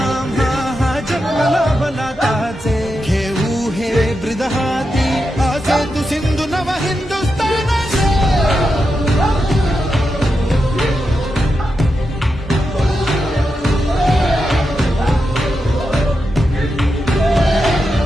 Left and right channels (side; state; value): both; normal; correlation 0.87